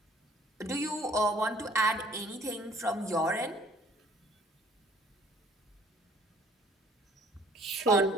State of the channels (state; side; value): normal; both; correlation 0.57